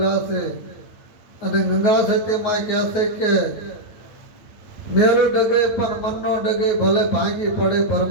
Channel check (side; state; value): right; late; 9.1 ms